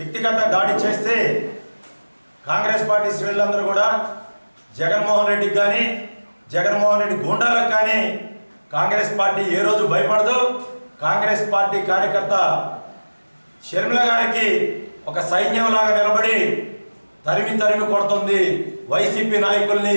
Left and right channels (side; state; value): both; inverted; correlation -1.00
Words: దాడి చేస్తే కాంగ్రెస్ పార్టీ శ్రేణులందరూ కూడా జగన్మోహన్ రెడ్డికి కానీ జగన్మోహన్ రెడ్డి గూండాలకు కానీ కాంగ్రెస్ పార్టీ ఏ రోజు భయపడదు. కాంగ్రెస్ పార్టీ కార్యకర్త షర్మిల గారికి ఒక సైన్యంలాగా నిలబడి తరిమి తరిమి కొడుతుంది వైసీపీ